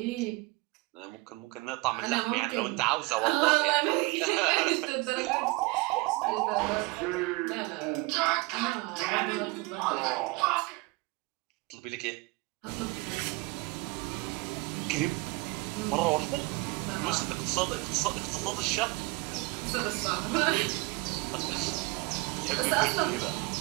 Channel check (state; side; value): quieter; left; 24.9 dB